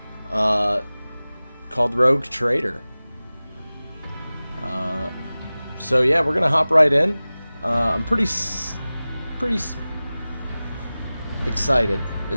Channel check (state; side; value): inverted; both; correlation -0.98